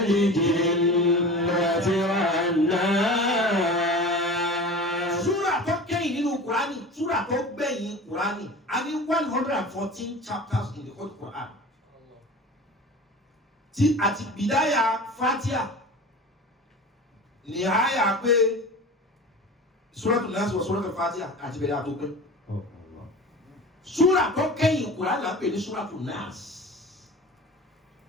wan nas. Surah tó gbẹ̀yìn Qur'ani a ní 114 chapters in the whole Qur'an tí àti bìdáyà Fatiha ní àyà pé Suratul Nas wa Suratul Fatiha àti bẹ̀rẹ̀ àtó pé surah tó kẹ́yìn Qur'an là ń pè ní Suratul Nas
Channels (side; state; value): both; normal; correlation 0.36